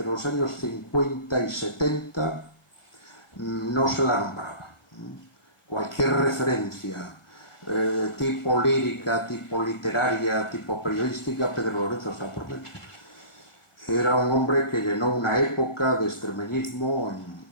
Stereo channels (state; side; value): late; right; 1.5 ms